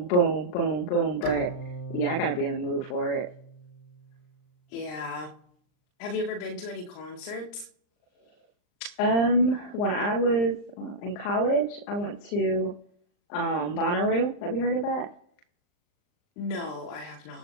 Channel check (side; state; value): right; late; 39 ms